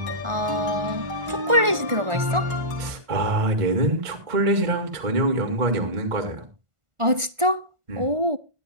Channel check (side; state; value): left; late; 1.4 ms